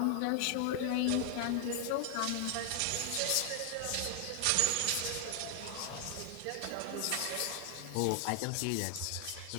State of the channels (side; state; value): both; different; correlation 0.00